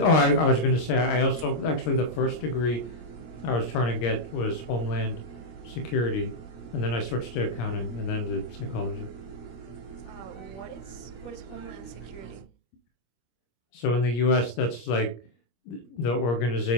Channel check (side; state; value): right; late; 26 ms